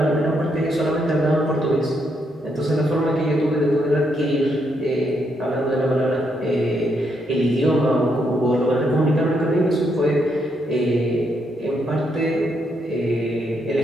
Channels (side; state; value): both; normal; correlation 0.77